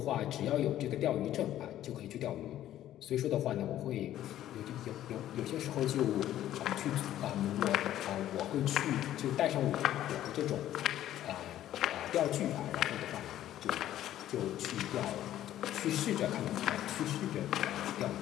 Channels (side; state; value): right; quieter; 12.6 dB